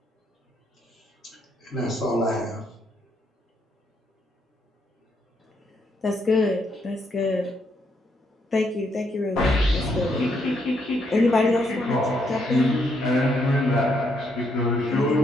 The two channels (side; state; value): both; normal; correlation 0.75